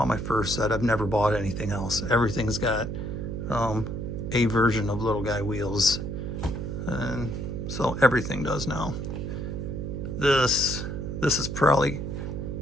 my first set, I've never bought anything else. Everything's got a version of little guy wheels. And so everything does now. This is probably,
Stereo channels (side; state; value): right; noise; hum, 4 dB below the sound